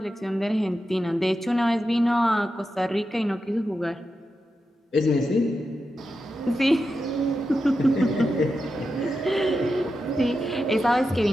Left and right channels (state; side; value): normal; both; correlation 0.89